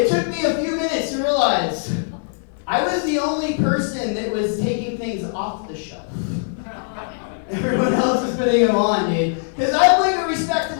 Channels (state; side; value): silent; right; digital silence